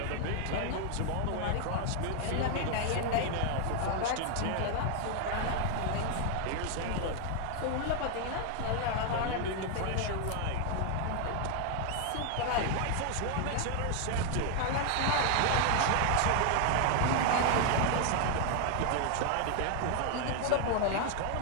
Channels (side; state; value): both; different; correlation 0.00